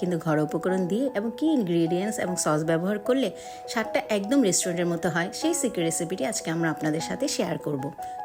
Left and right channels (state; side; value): identical; both; correlation 1.00